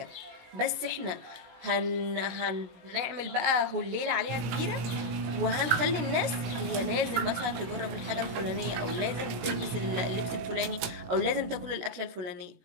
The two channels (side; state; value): left; late; 17 ms